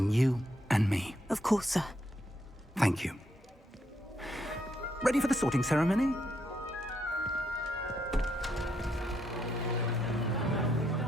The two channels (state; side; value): normal; both; correlation 0.77